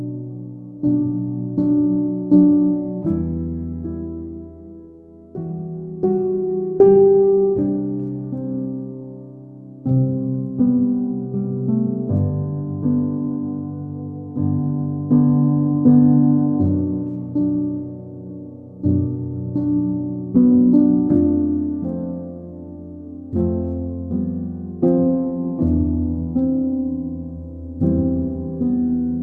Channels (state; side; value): identical; both; correlation 1.00